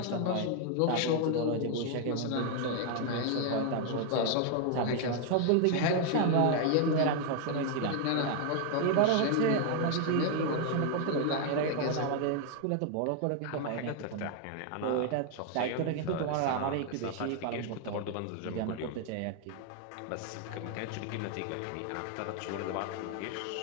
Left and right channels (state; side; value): different; both; correlation 0.00